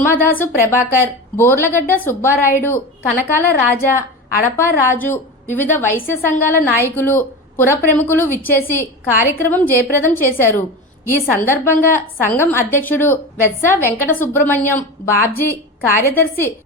ప్రభాకర్, బోర్లగడ్డ సుబ్బారాయుడు, కనకాల రాజా, అడపా రాజు, వివిధ వైశ్య సంఘాల నాయకులు, పుర ప్రముఖులు విచ్చేసి కార్యక్రమం జయప్రదం చేశారు. ఈ సందర్భంగా సంఘం అధ్యక్షుడు వెత్స వెంకట సుబ్రహ్మణ్యం, బాబ్జీ, కార్యదర్శి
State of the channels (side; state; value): both; normal; correlation 0.26